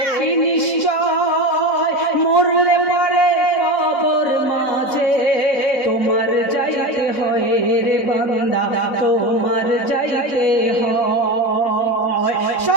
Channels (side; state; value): right; late; 4.0 ms